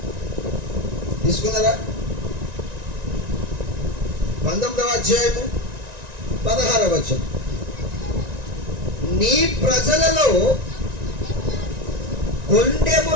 తీసుకున్నారా? 19వ అధ్యాయము 16వ వచనం. నీ ప్రజలలో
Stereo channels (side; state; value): left; late; 1.9 ms